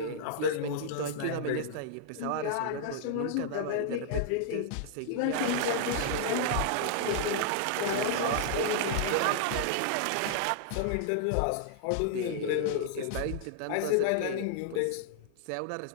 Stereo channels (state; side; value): different; both; correlation -0.01